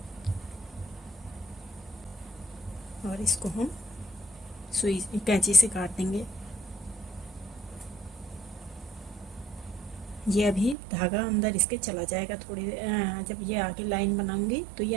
और इसको हम सुई कैंची से काट देंगे। ये अभी धागा अंदर इसके चला जाएगा, थोड़ी जब ये आगे लाइन बनाऊंगी तो ये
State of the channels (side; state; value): left; drops out; at 10.8 s